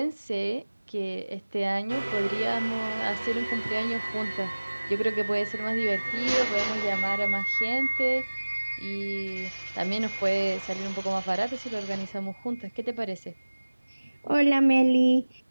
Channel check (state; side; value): inverted; both; correlation -1.00